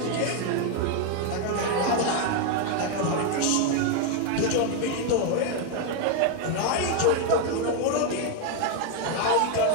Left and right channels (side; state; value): both; different; correlation 0.01